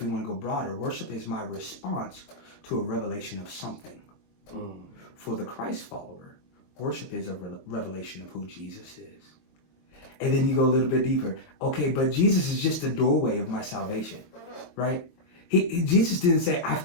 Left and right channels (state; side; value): late; right; 22 ms